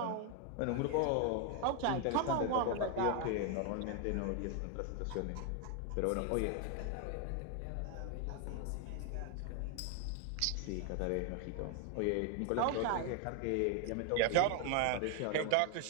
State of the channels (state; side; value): different; both; correlation 0.01